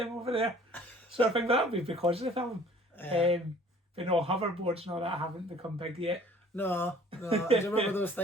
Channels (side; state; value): both; normal; correlation 0.53